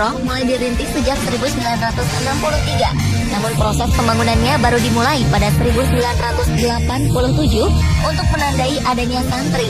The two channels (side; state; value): both; identical; correlation 1.00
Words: mulai dirintis sejak 1963. Namun proses pembangunannya baru dimulai pada 1987 untuk menandai adanya santri